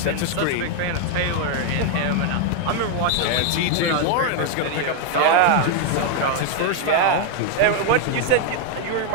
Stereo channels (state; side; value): different; both; correlation 0.01